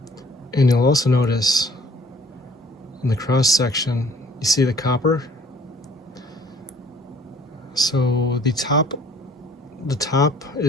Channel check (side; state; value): both; normal; correlation 0.56